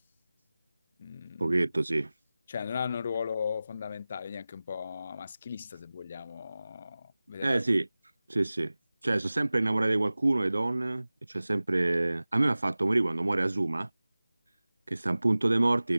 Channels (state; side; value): inverted; both; correlation -0.97